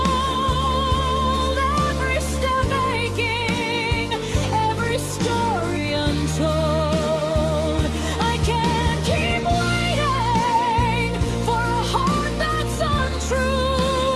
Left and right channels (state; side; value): identical; both; correlation 1.00